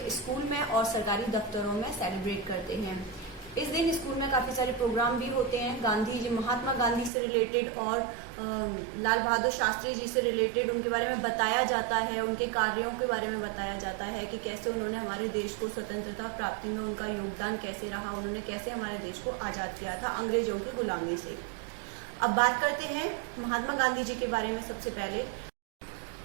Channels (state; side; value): drops out; left; at 7.1 s